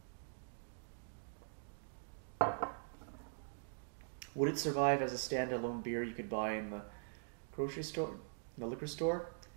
Would it survive as a standalone beer you could buy in the grocery store, the liquor store?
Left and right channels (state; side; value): silent; left; digital silence